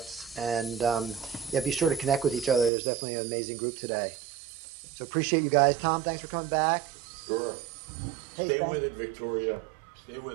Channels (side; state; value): left; drops out; at 2.7 s